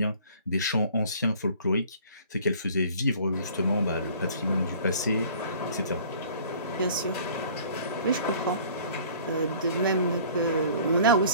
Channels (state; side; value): inverted; both; correlation -0.50